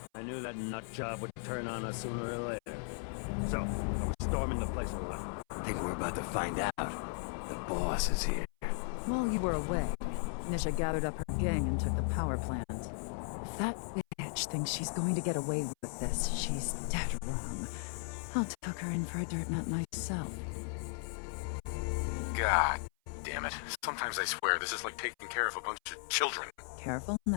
I knew that nut job would turn on us sooner or later. So, are we storming the place or what? I think we're about to find out. The boss is here. While you were away, Nisha gathered up her gang and took the power plant. If that bitch thinks she's going to get away with this, she's dead wrong. I'll tuck her in for a dirt nut myself. God damn it. Sometimes I swear this is like taking care of a bunch of children. Careful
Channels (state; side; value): silent; right; 54 dB below the other